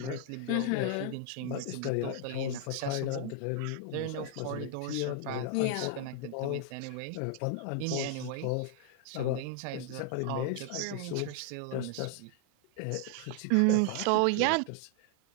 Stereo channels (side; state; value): both; different; correlation 0.00